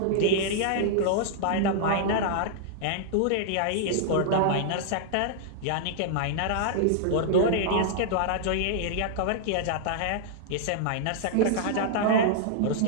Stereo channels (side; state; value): both; different; correlation -0.01